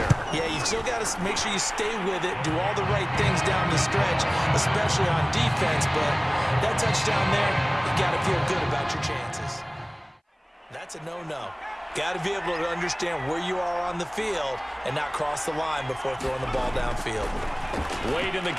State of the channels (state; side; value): identical; both; correlation 1.00